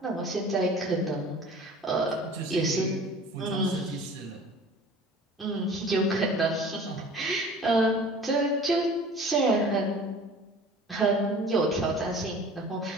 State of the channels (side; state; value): both; normal; correlation 0.45